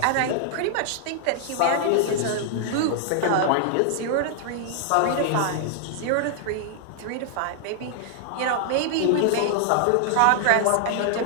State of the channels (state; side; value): different; both; correlation -0.01